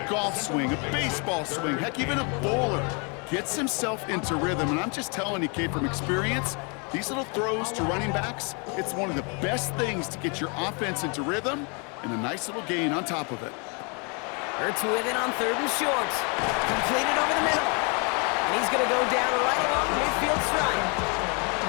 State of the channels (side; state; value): right; quieter; 34.3 dB